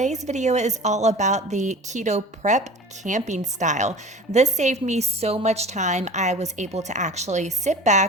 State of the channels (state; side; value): normal; both; correlation 0.39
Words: video is all about the keto prep camping style. This saved me so much time. I was able to actually sit